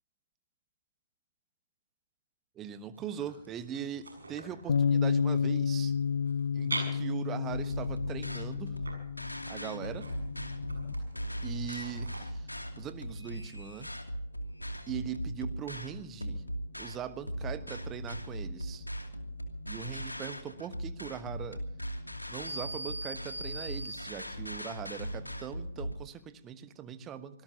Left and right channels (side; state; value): both; inverted; correlation -0.65